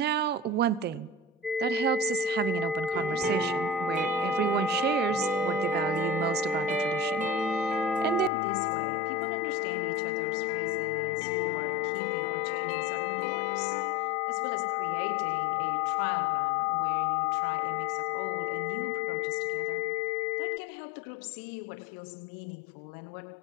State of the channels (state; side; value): drops out; right; at 8.3 s